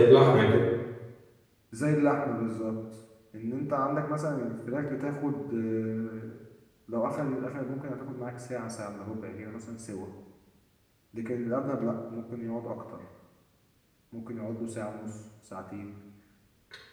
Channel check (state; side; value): identical; both; correlation 1.00